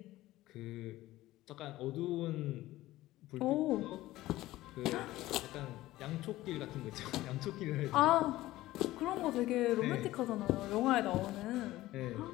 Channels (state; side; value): quieter; right; 16.5 dB